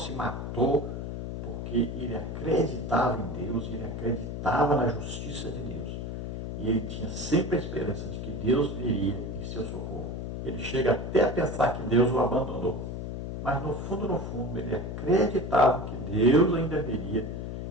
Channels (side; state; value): left; noise; hum, 5 dB below the sound